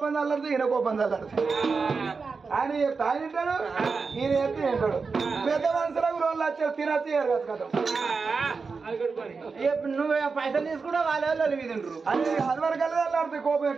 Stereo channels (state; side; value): quieter; left; 4.7 dB